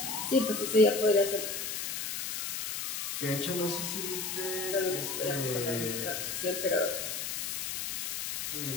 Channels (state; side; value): noise; left; hiss, 3 dB below the sound